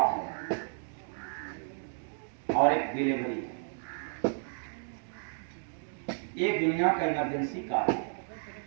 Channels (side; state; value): left; silent; digital silence